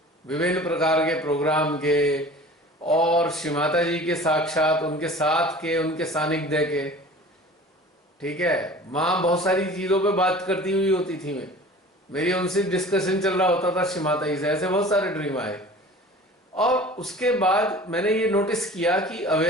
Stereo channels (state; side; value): normal; both; correlation 0.42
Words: विभिन्न प्रकार के प्रोग्राम के, और श्री माता जी के साक्षात, उनके साथ के, उनके सानिध्य के। ठीक है, माँ बहुत सारी चीजों पे बात करती हुई होती थी, मेरी उनसे डिस्कशन चल रहा होता था श्री माता जी से, ऐसे बहुत सारे ड्रीम आए। और उसके बाद मैंने ये नोटिस किया कि